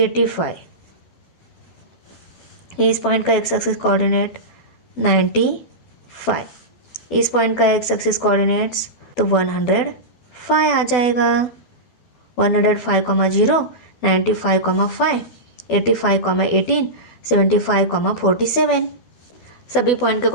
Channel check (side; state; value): right; late; 12 ms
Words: इस पॉइंट का एक्स एक्सिस कोऑर्डिनेट 95, इस पॉइंट का एक्स एक्सिस कोऑर्डिनेट्स तो 105 आ जाएगा। 105, 0, 95, 5, 85, 18, 75, 47। सभी पॉइंट के